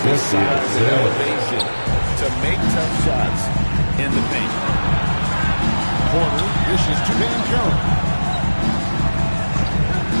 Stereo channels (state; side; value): inverted; both; correlation -1.00